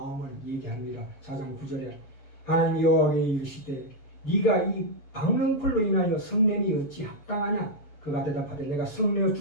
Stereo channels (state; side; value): late; right; 7.1 ms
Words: 얘기합니다. 4장 9절에 하나님이 여호와께 이르시되 네가 이 박능풀로 인하여 성냄이 어찌 합당하냐? 그가 대답하되 내가 성내어